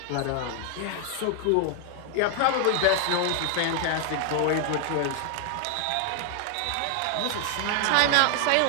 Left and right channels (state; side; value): different; both; correlation 0.00